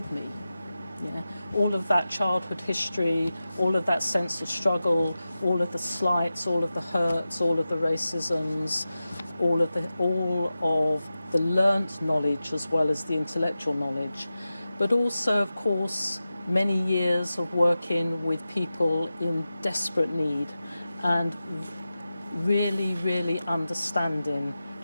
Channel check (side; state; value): both; inverted; correlation -0.94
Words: me. Yeah, all of that childhood history, all of that sense of struggle, all of the slights, all of the hurts, all of the racisms, all of the learnt knowledge as well as the intellectual knowledge. But also, of course, many years of working with people in desperate need and really understanding